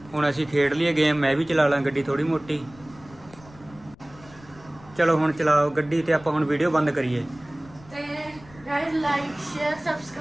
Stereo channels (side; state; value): left; noise; rumble, 23 dB below the sound